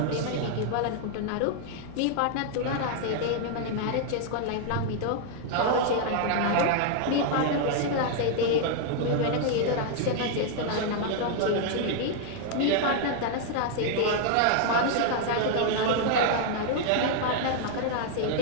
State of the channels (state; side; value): different; both; correlation 0.00